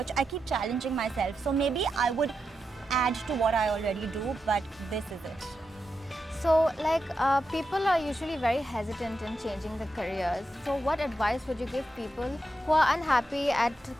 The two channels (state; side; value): normal; both; correlation 0.87